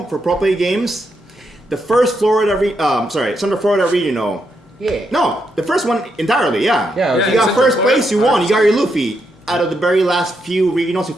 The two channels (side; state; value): both; normal; correlation 0.81